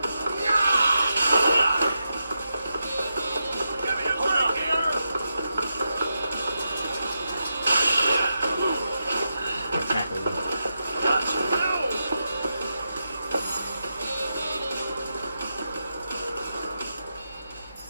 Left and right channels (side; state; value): both; inverted; correlation -0.87